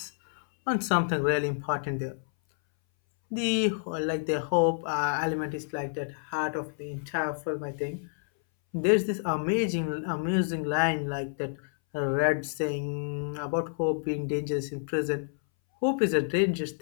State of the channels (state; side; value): silent; right; 59 dB below the other